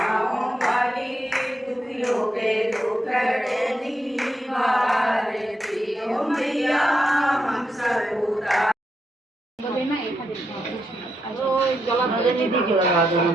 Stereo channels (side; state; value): both; normal; correlation 0.83